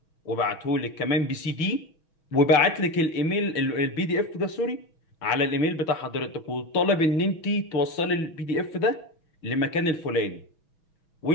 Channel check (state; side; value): late; right; 6.2 ms